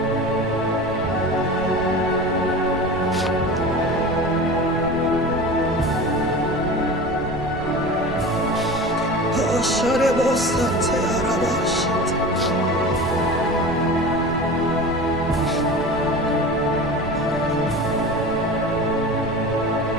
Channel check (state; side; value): noise; right; rumble, 12 dB below the sound